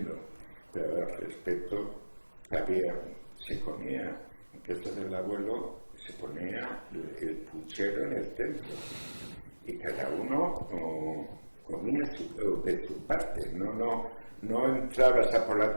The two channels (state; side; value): inverted; both; correlation -1.00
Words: pero el respeto que se comía en casa del abuelo, se ponía el puchero en el centro y cada uno comía de su parte, no entrabas a por la